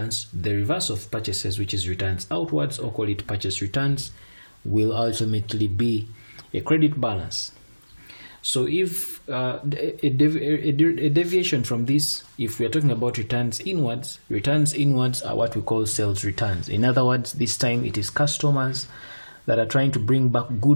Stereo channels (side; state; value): both; inverted; correlation -1.00